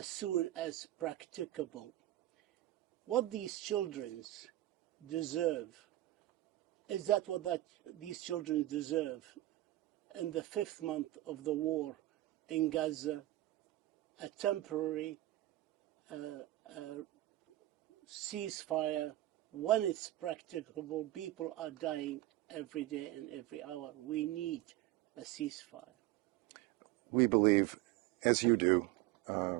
soon as practicable. What these children deserve, is that what these children deserve in the 5th month of the war in Gaza, a temporary ceasefire when it's practicable? People are dying every day and every hour. We need a ceasefire. We believe, as you do,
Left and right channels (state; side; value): quieter; left; 15.9 dB